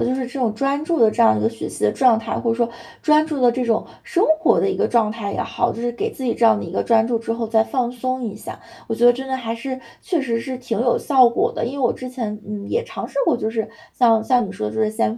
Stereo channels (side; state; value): both; identical; correlation 1.00